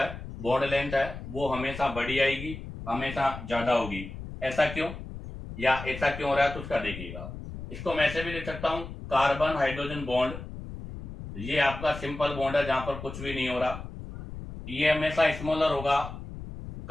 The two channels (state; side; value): noise; left; rumble, 10 dB below the sound